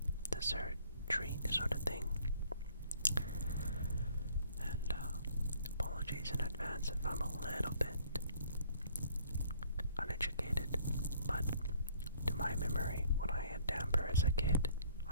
dessert treat sort of thing. And apologies in advance if I'm a little bit uneducated, but to my memory, when I had damper as a kid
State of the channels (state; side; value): inverted; both; correlation -0.59